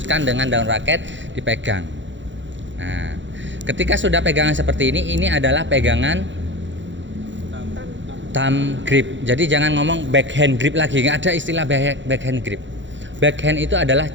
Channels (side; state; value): left; late; 0.54 ms